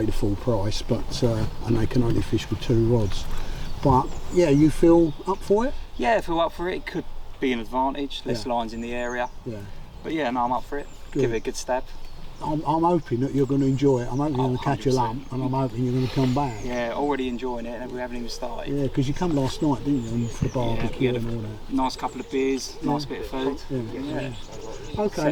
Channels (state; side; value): identical; both; correlation 1.00